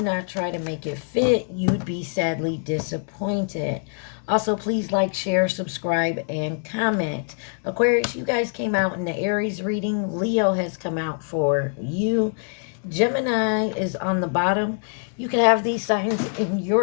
try to make it fit. You'd be sadly disappointed. Also, please like, share, subscribe, and comment. Aquarius, you guys came out in the Aries reading. Leo has come out for you. Gemini is on the bottom. You could have these signs in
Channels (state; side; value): silent; right; 63 dB below the other